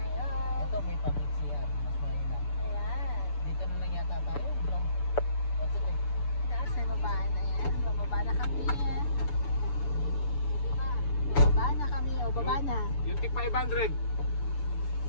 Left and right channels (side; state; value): right; late; 6.9 ms